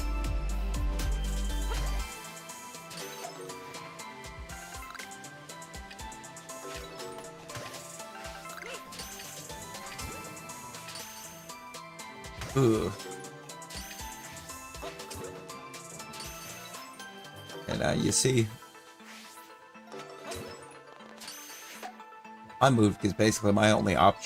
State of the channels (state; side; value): identical; both; correlation 1.00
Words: Ugh. And you see, I moved because basically my only